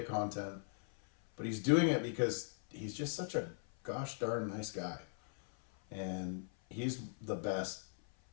content. But he's doing it because he's just such a gosh darn nice guy. And he's the best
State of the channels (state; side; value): silent; right; 52 dB below the other